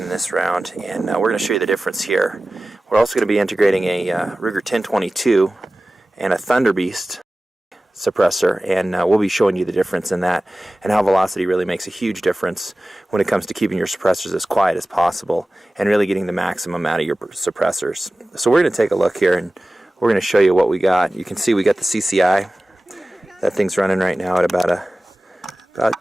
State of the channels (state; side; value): normal; both; correlation 0.97